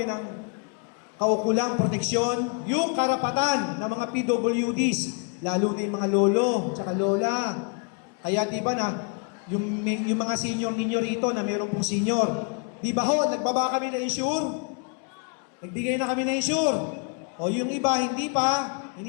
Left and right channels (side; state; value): right; quieter; 37.5 dB